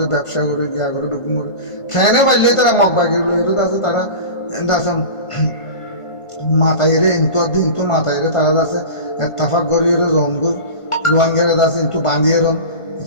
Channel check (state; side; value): late; right; 1.5 ms